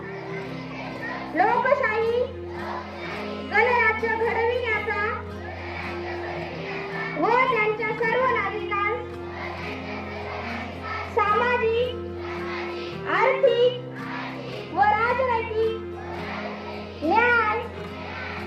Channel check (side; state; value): both; identical; correlation 1.00